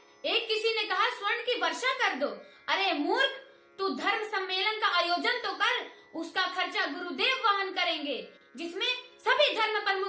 एक किसी ने कहा स्वर्ण की वर्षा कर दो। अरे मूर्ख, तू धर्म सम्मेलन का आयोजन तो कर, उसका खर्चा गुरुदेव वहन करेंगे, जिसमें सभी धर्म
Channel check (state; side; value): identical; both; correlation 1.00